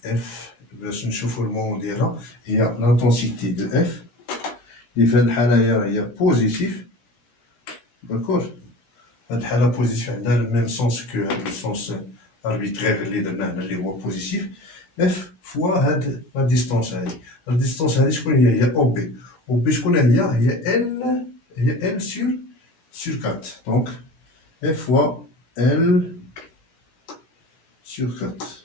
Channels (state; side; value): late; right; 17 ms